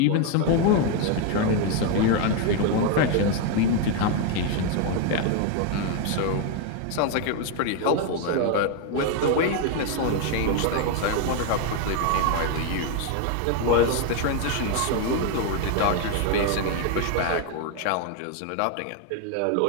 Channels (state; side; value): different; both; correlation 0.01